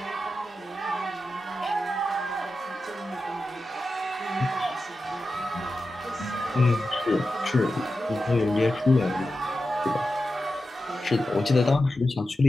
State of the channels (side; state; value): both; normal; correlation 0.91